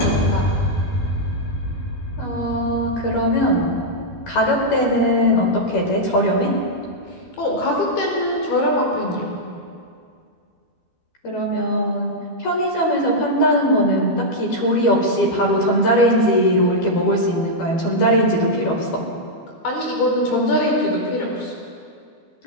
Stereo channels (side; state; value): right; late; 12 ms